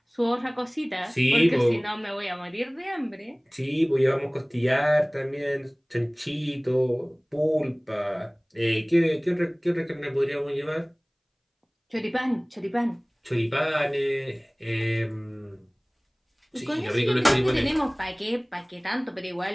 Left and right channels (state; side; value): identical; both; correlation 1.00